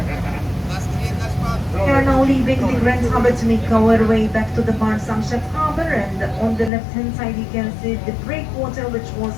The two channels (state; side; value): drops out; right; at 6.7 s